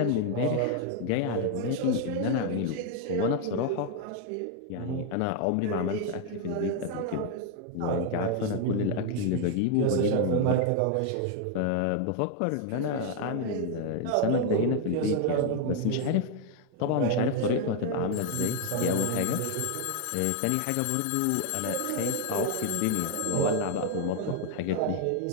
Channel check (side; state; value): both; different; correlation 0.01